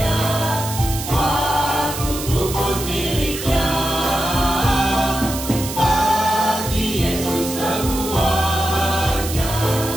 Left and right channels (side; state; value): right; noise; hiss, 8 dB below the sound